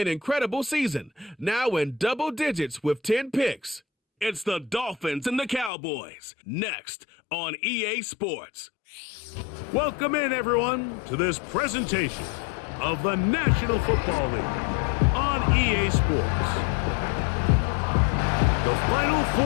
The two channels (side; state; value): right; drops out; at 5.7 s